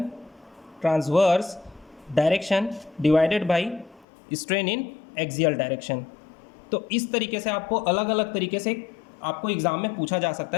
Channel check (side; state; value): right; drops out; at 4.0 s